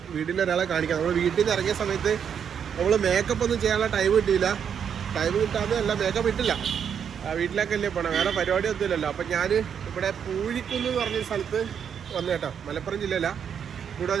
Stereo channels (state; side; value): quieter; left; 7.8 dB